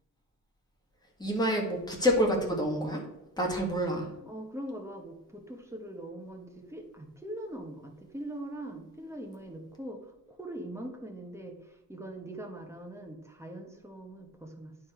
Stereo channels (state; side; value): normal; both; correlation 0.30